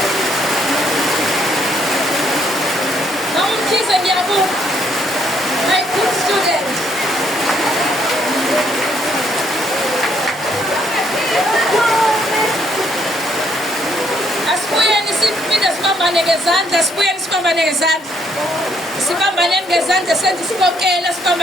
My good student. Asibuyeni siphinde sibambane ngezandla, asibuyeni sibambane ngezandla. Sibambane ngezandla senze isibokela,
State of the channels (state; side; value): normal; both; correlation 0.70